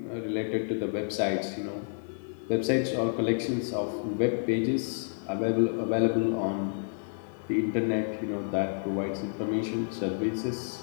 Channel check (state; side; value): silent; right; 58 dB below the other